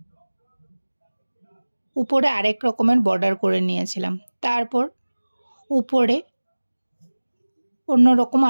উপরে আরেক রকমের বর্ডার করে নিয়েছিলাম। তারপর উপরে অন্যরকম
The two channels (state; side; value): inverted; both; correlation -1.00